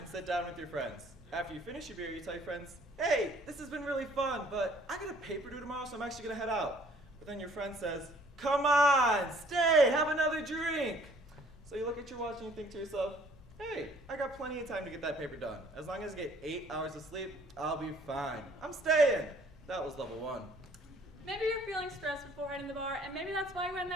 sit down with your friends. After you finish your beer, you tell your friends, "Hey, this has been really fun, but I got a paper due tomorrow, so I'm actually gonna head out." But then your friend says, "Come on, stay, have another drink." So you look at your watch and you think to yourself, "Hey, I got plenty of time to get that paper done. As long as I get 8 hours of sleep, I'll be fine. I'm staying." That was level 1. Maybe you're feeling stressed before heading to the bar, and maybe that's why you went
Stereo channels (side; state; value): both; normal; correlation 0.58